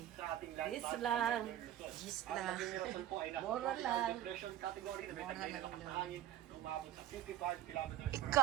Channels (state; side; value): quieter; left; 12.4 dB